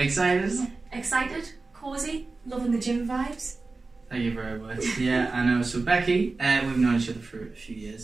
Excited, cosy, loving the gym vibes. Thank you very much. Yeah, I know. So Becky, we've known each other for a few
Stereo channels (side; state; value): left; quieter; 3.7 dB